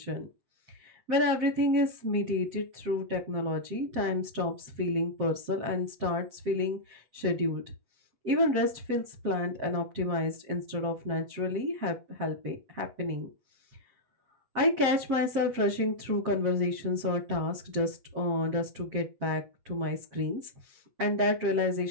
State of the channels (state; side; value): late; left; 8.1 ms